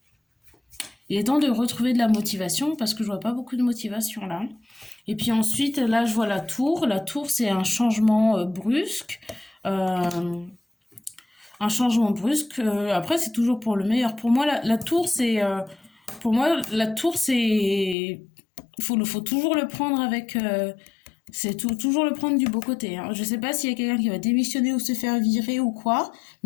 Il est temps de retrouver de la motivation parce que je vois pas beaucoup de motivation là. Et puis ensuite, là, je vois la tour. La tour, c'est un changement brusque. Un changement brusque. Après, c'est toujours pour le meilleur. Pour moi, la tour, c'est... faut toujours le prendre avec... toujours le prendre du beau côté. Hein. Je sais pas s'il y a quelqu'un qui va démissionner ou se faire virer ou quoi.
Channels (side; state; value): right; drops out; at 17.9 s